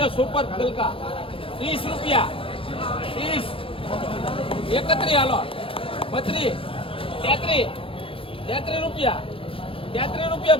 સુપર ગલકા 30 રૂપિયા 30 31 હાલો 32 33 રૂપિયા 33 રૂપિયા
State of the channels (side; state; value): right; late; 0.26 ms